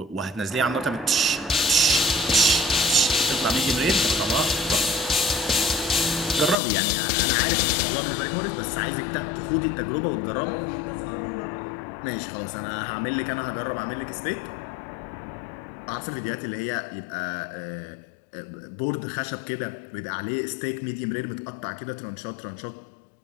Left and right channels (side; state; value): right; drops out; at 6.6 s